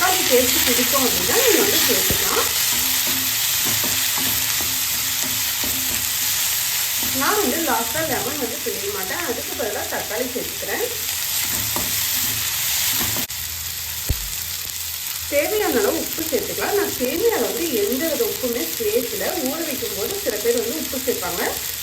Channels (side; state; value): both; identical; correlation 1.00